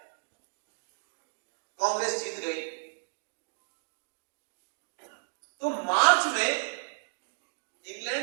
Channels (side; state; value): left; silent; digital silence